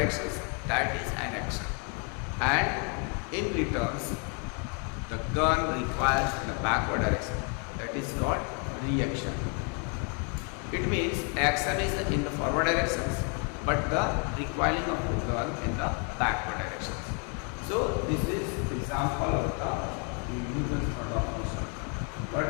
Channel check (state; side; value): quieter; right; 38.0 dB